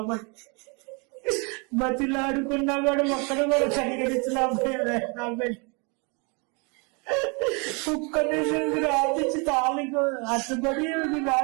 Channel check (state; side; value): quieter; left; 32.3 dB